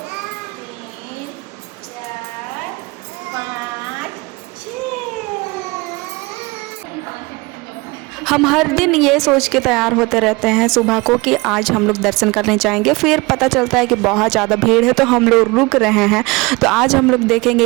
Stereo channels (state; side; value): quieter; left; 24.7 dB